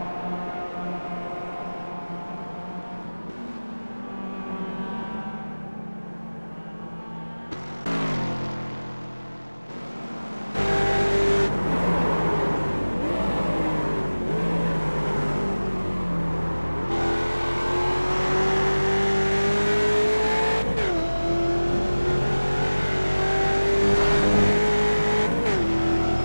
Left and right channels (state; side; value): inverted; both; correlation -1.00